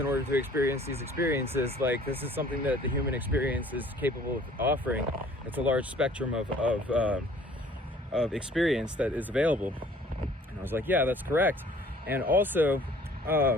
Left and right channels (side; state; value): both; normal; correlation 0.54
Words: order to experience these experiences. Like, this is something that the human experience is capable of offering. It's a large spectrum of experience that is available. And I was like, yeah, that's correct. And also,